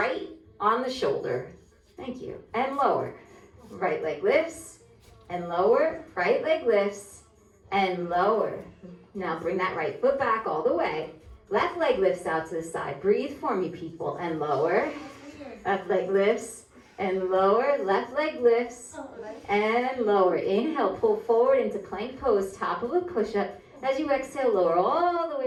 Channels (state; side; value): identical; both; correlation 1.00